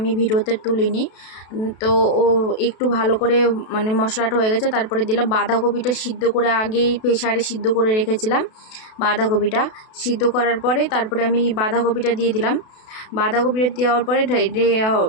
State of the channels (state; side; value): late; right; 32 ms